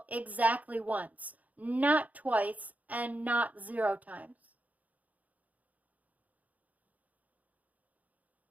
exactly once, not twice and not 0 times.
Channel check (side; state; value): left; late; 0.075 ms